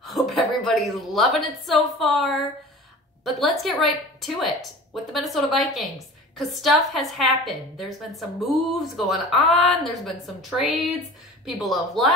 everybody's loving it so far. But let's get right to it with the Minnesota Vikings, because stuff has happened. There's been some moves going on. There's been some trades. People have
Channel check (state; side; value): normal; both; correlation 0.40